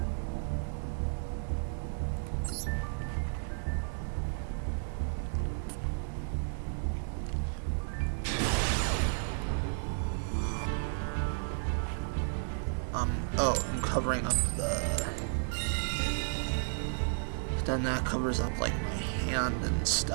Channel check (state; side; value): silent; left; 56 dB below the other